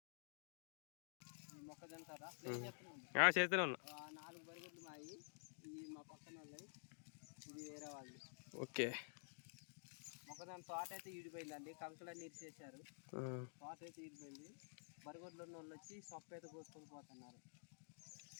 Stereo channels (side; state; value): right; silent; digital silence